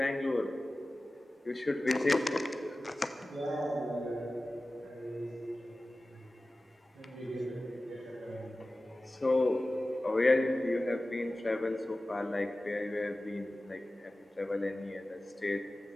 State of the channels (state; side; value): normal; both; correlation 0.96